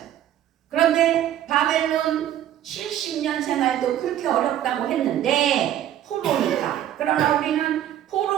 그런데 바벨론 70년 생활도 그렇게 어렵다고 했는데 포로니까. 그러나 우리는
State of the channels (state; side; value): quieter; left; 11.6 dB